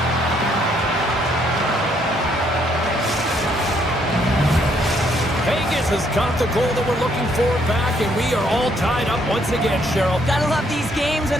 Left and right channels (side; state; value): both; normal; correlation 0.70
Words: Vegas has got the goal that we're looking for back, and we are all tied up once again, Cheryl. Gotta love these games